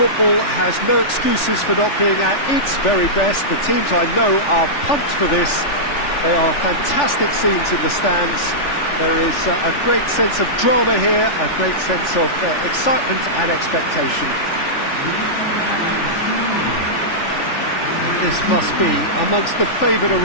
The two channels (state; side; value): late; right; 3.4 ms